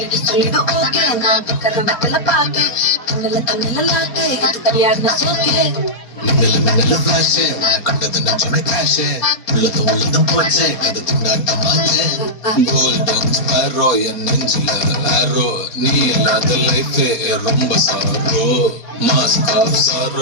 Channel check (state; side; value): late; right; 4.3 ms